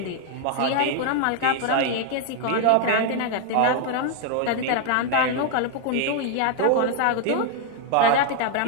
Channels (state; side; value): different; both; correlation 0.00